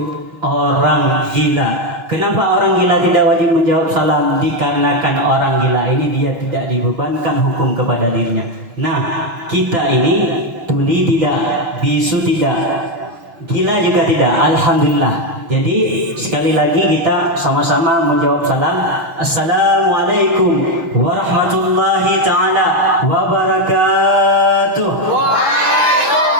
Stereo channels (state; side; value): late; left; 5.9 ms